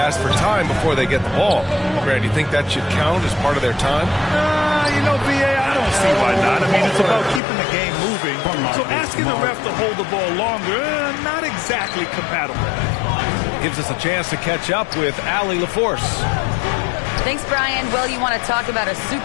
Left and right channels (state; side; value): drops out; right; at 7.4 s